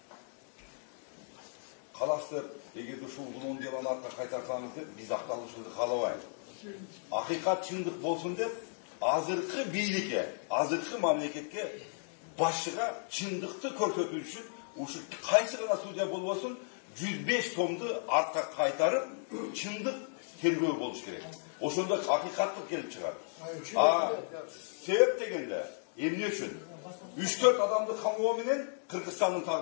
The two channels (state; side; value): silent; right; digital silence